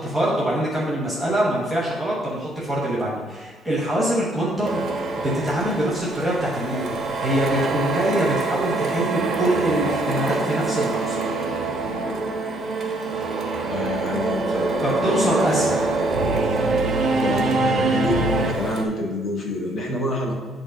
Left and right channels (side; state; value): both; normal; correlation 0.67